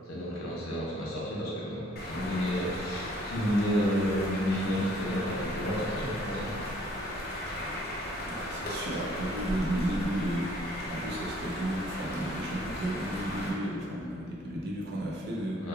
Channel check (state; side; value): normal; both; correlation 0.61